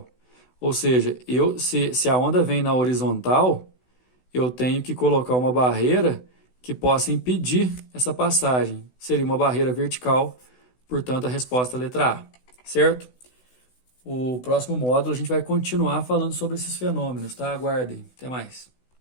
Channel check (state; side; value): late; right; 16 ms